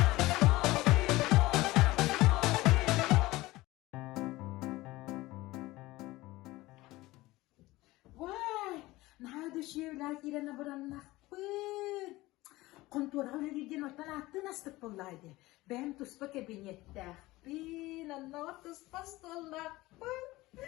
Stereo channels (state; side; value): quieter; right; 19.1 dB